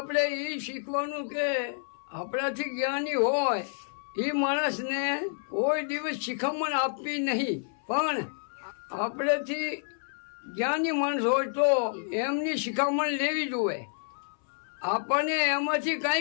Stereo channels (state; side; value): silent; right; 58 dB below the other